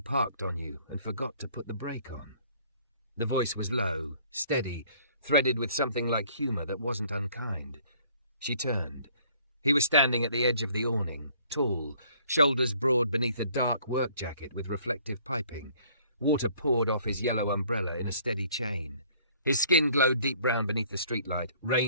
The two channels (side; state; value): both; inverted; correlation -0.58